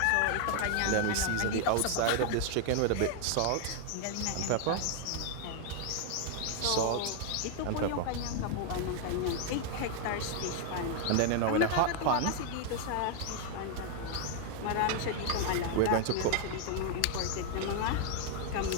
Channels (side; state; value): both; different; correlation 0.00